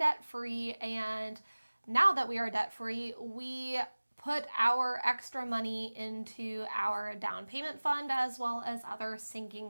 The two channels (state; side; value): inverted; both; correlation -1.00